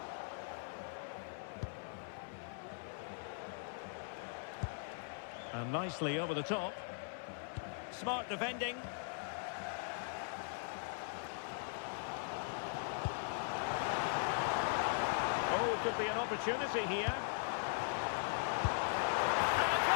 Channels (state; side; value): silent; right; 51 dB below the other